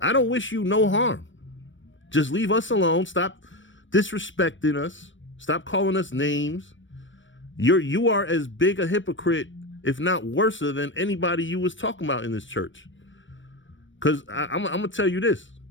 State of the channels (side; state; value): right; late; 0.56 ms